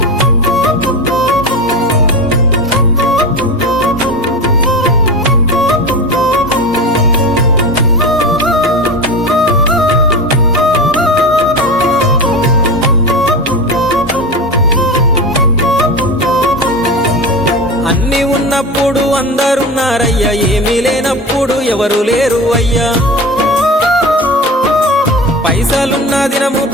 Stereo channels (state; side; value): normal; both; correlation 0.26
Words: అన్ని ఉన్నప్పుడు అందరున్నారయ్యా ఏమీ లేనప్పుడు ఎవరు లేరు అయ్యా పైసలున్న దినము